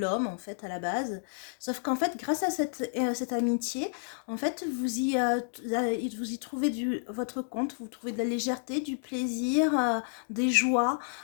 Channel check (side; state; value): right; silent; digital silence